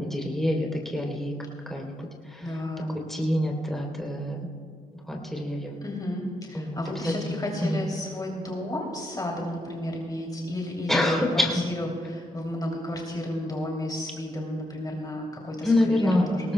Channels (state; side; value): normal; both; correlation 0.82